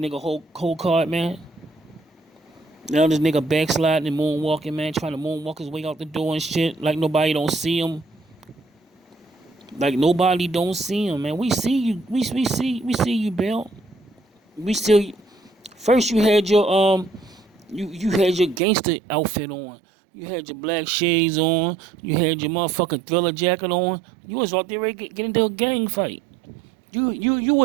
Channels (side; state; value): left; drops out; at 18.6 s